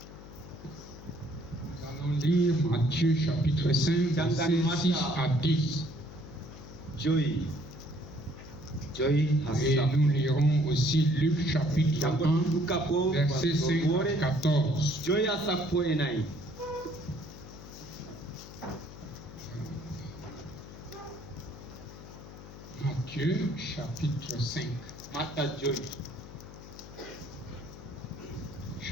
allons lire Matthieu chapitre 5, versets 6 à 10. Et nous lirons aussi Luc chapitre 1, versets 5 à 14. Matthieu chapitre 5.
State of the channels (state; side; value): noise; left; hum, 15 dB below the sound